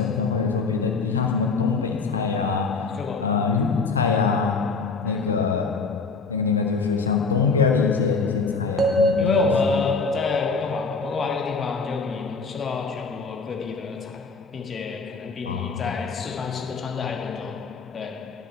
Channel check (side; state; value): right; quieter; 4.4 dB